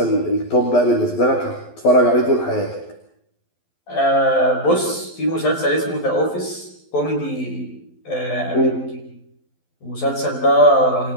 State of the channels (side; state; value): right; late; 12 ms